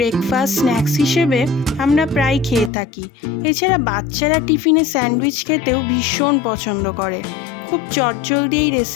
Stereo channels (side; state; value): right; drops out; at 2.7 s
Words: snacks হিসেবে আমরা প্রায় খেয়ে থাকি। এছাড়া বাচ্চারা টিফিনে স্যান্ডউইচ খেতেও ভীষণ পছন্দ করে। খুব চটজলদি এই